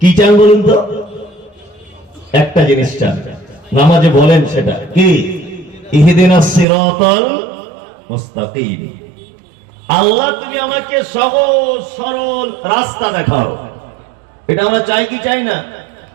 চান বলুন তো? একটা জিনিস চান, নামাজে বলেন সেটা কি? ইহদিনাস সিরাতাল মুস্তাকিম। আল্লাহ তুমি আমাকে সহজ সরল রাস্তা দেখাও। এটা আমরা চাই কি চাই না?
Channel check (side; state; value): left; drops out; at 6.7 s